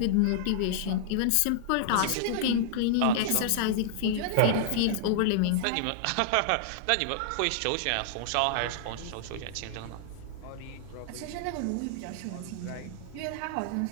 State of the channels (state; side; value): different; both; correlation -0.01